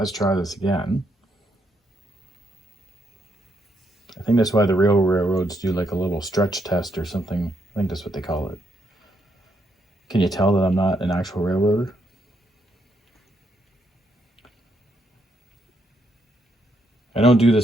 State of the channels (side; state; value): both; normal; correlation 0.76